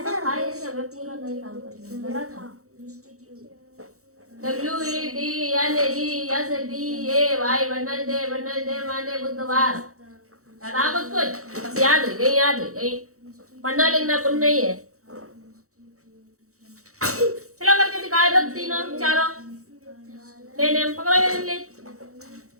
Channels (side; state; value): left; late; 0.65 ms